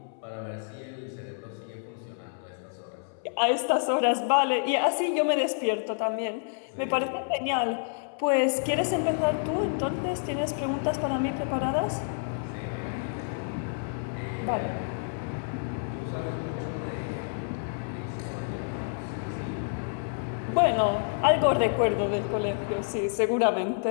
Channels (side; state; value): right; silent; 59 dB below the other